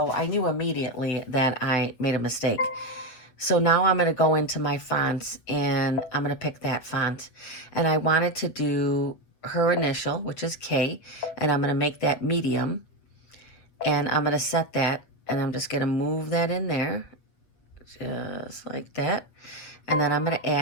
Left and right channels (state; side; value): late; right; 8.2 ms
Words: I knew immediately that I made a mistake. So now I'm going to go into my fonts and I'm going to pick that font. And I wanted to do her initial, which is K, and I'm going to make that medium. And I'm going to set that, and I'm just going to move that in there, just like that. And then I'm going to